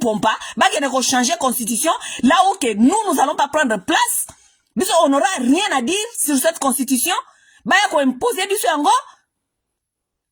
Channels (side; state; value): both; identical; correlation 1.00